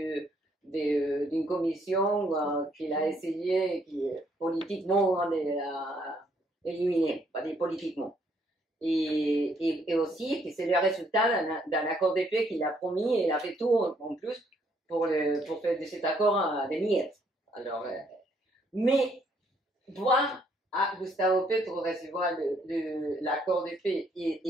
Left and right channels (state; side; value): normal; both; correlation 0.69